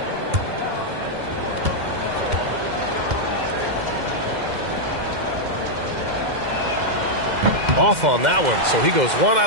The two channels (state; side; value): late; left; 2.0 ms